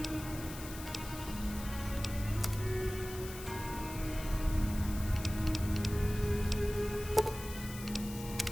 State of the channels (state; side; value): noise; left; hiss, 12 dB below the sound